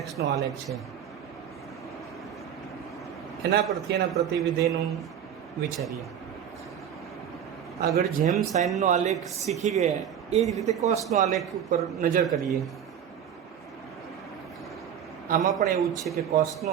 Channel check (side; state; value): left; quieter; 9.1 dB